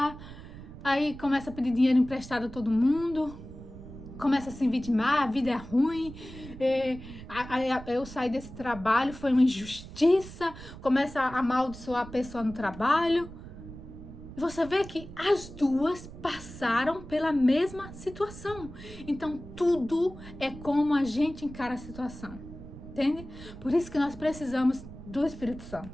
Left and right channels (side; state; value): right; noise; rumble, 14 dB below the sound